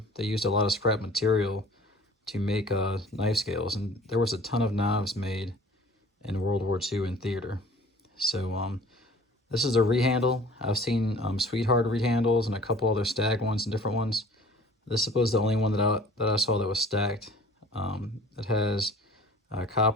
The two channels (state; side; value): normal; both; correlation 0.48